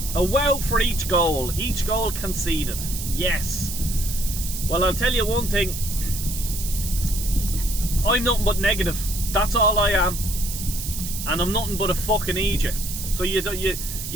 A wow for each goal. Each goal conceded. Yes. Well, I'll tell you one thing. I'm nothing but negative. That's all I am. And I'm nothing but a fucking idiot. So you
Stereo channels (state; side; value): noise; right; hiss, 7 dB below the sound